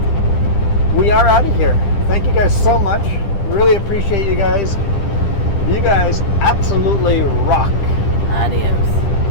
we are out of here. Thank you guys so much. Really appreciate you guys. You guys absolutely rock. Adios.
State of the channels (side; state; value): right; late; 10 ms